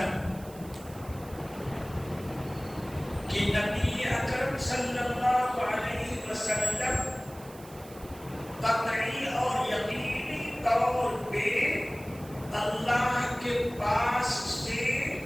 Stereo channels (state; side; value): noise; right; hiss, 21 dB below the sound